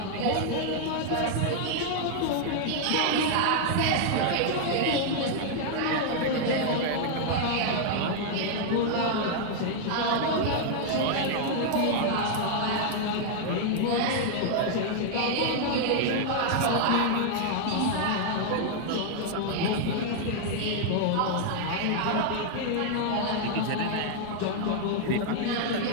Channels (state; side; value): different; both; correlation 0.00